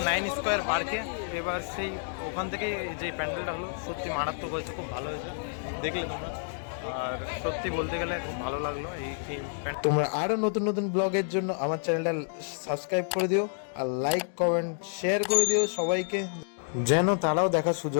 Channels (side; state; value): right; silent; digital silence